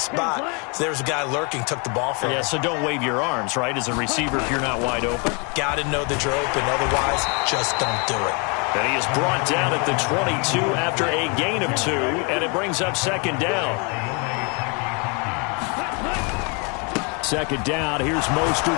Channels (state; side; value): quieter; right; 33.6 dB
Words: So there's a guy lurking, took the ball from him. Yeah, so don't wave your arms, right, as a receiver if you're not wide open. Got to know that you're open. Otherwise, just don't do it. And he is brought down at the 22 after a gain of 2, and it brings up 2nd down. 2nd down, here's